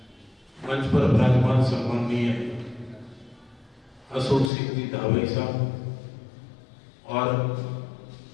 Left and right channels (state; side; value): drops out; right; at 4.5 s